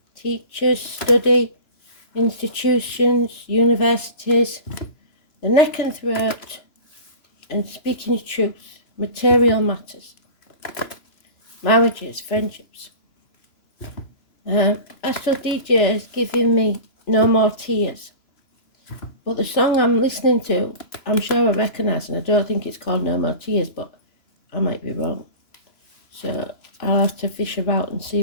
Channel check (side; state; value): right; late; 2.9 ms